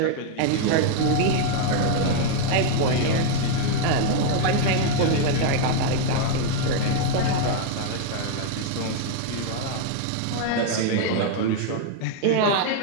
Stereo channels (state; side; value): different; both; correlation 0.00